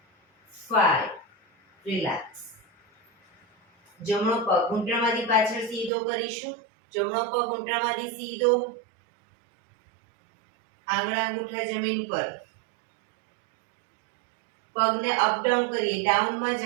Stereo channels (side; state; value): left; drops out; at 5.9 s